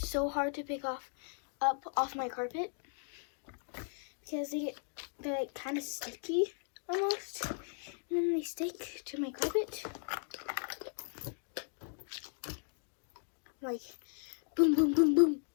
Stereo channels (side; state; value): right; silent; 53 dB below the other